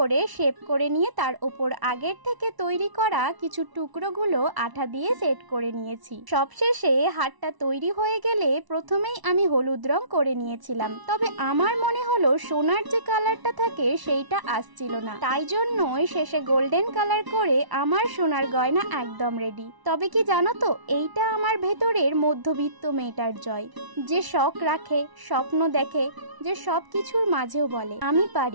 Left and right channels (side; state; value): left; late; 1.0 ms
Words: শেপ করে নিয়ে তার উপর আগের থেকে তৈরি করা কিছু টুকরোগুলো আঠা দিয়ে সেট করে নিয়েছি। সবশেষে হারটা তৈরি হয়ে গেলে প্রথমেই আমি হলুদ রং করে নিয়েছিলাম, তবে আমার মনে হলো সোনার যে কালারটা থাকে সেইটা আসছিল না, তাই জন্যই শেষে গোল্ডেন কালার করে আমার সোনার গয়না একদম রেডি। তবে কি জানো তো, এইটা আমার ভেতরের মধ্যবিত্ত মেয়েটার জয়, যে শখ রাখে, স্বপ্ন দেখে, যে সব কিছুর মাঝেও বলে আমি